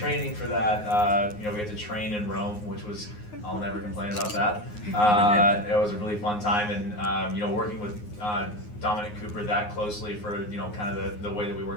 for that. We had to train in Rome, which was, I'll never complain about that. It was a really fun time, and working with Dominic Cooper that closely for kind of the way that we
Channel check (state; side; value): late; right; 9.6 ms